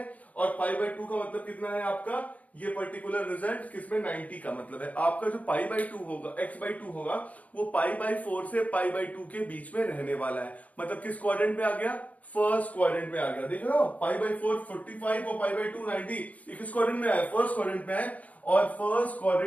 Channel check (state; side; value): late; right; 0.071 ms